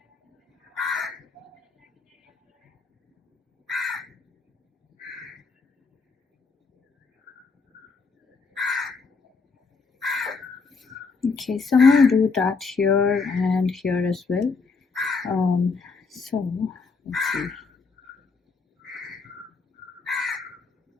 Okay, so I'm going to do that here and here as well. So let's see.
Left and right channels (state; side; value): quieter; right; 4.6 dB